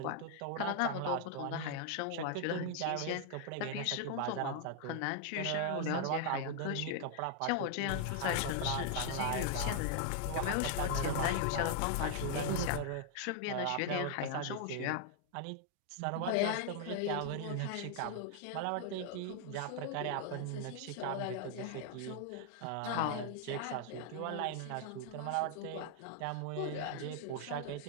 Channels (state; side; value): different; both; correlation 0.00